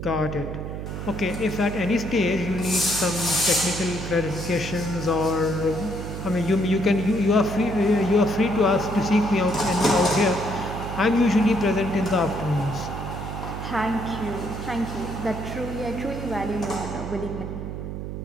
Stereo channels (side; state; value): right; noise; hum, 6 dB below the sound